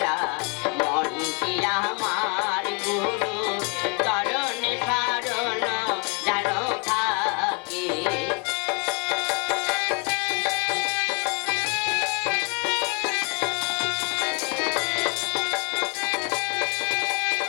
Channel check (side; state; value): right; quieter; 34.5 dB